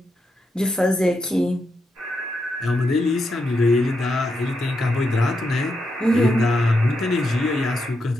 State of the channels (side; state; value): both; normal; correlation 0.83